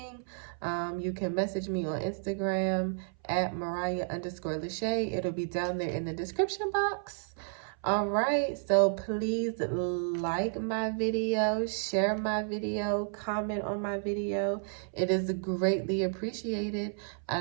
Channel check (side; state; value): left; silent; 57 dB below the other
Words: You can message me on Instagram at Mariah_Lachey. It'll be down there in the description box. All right, so please like my video, share my video, comment on my video. It is greatly appreciated.